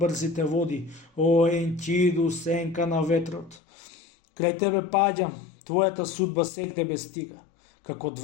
води. О, Енкиду, сенка на ветрот. Крај тебе паѓам, твојата судба сегде ме стига. Како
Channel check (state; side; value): drops out; right; at 3.6 s